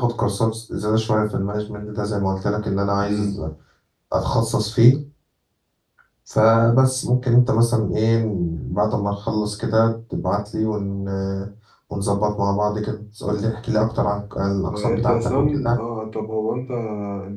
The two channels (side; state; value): both; identical; correlation 1.00